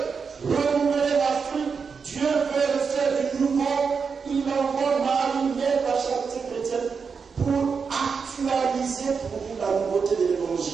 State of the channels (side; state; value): left; quieter; 5.6 dB